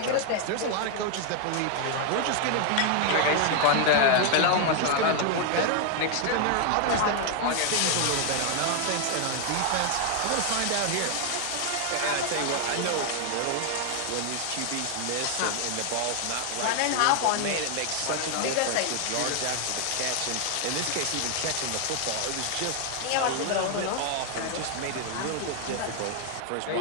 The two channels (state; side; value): different; both; correlation 0.00